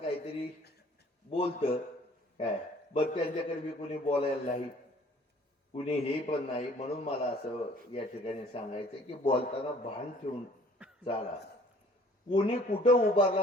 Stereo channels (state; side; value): normal; both; correlation 0.54